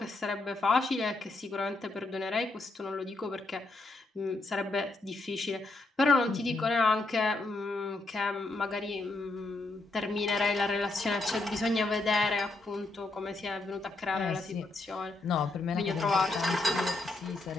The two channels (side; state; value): right; quieter; 3.1 dB